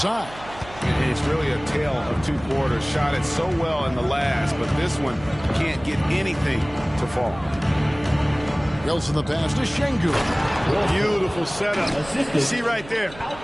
It's really a tale of 2 quarters. Shot it so well in the last, but this one can't get anything to fall. Wilson the pass to Şengün. Beautiful setup. You see right there,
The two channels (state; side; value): noise; right; hum, 17 dB below the sound